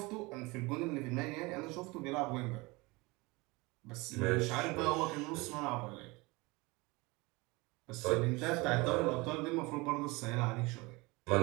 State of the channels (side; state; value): left; quieter; 24.3 dB